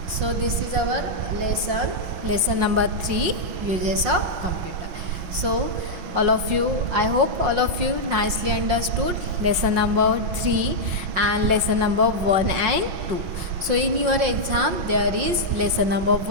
So this is our lesson number 3, uses of computer. So all of you, I hope all of you nicely understood lesson number 3 and lesson number 1 and 2. So in your exam there is lesson number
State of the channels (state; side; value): late; left; 5.6 ms